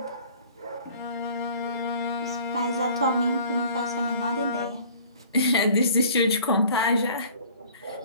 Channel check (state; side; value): inverted; both; correlation -0.50